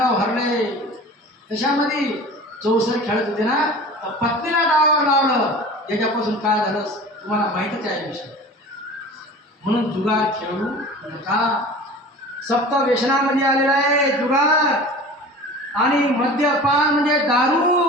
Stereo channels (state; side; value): normal; both; correlation 0.39